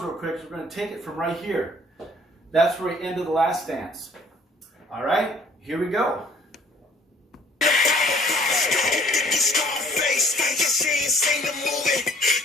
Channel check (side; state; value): both; normal; correlation 0.57